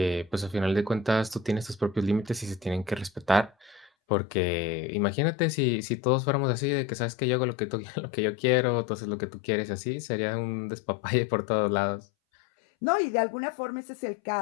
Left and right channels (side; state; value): right; drops out; at 3.9 s